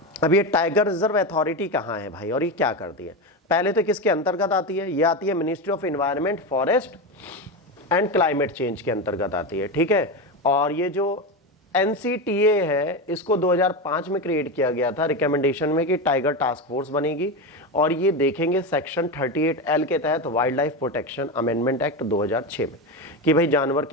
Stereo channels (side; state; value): both; normal; correlation 0.16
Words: अब ये टाइगर रिजर्व अथॉरिटी कहाँ है भाई, और ये क्या करती है? पहले तो किसके अंतर्गत आती है? ये आती है ministry of environment, forest and climate change के अंतर्गत आती है। ठीक है, और ये जो NCTA है, इसको 2005 में क्रिएट किया गया था रिकमेंडेशन में कि टाइगर टास्क फोर्स बनेगी, और ये देखेंगे सेक्शन 38L के तहत wild life protection amendment act 2006 में कि भाई जानवर